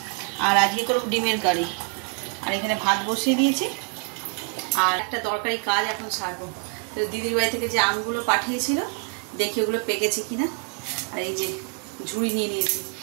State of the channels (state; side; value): quieter; left; 37.2 dB